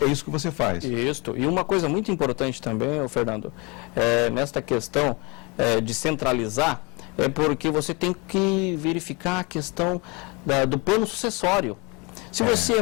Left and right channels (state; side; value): quieter; right; 27.5 dB